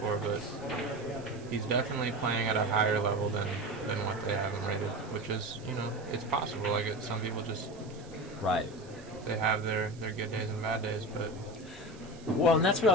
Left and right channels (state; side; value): noise; right; hiss, 23 dB below the sound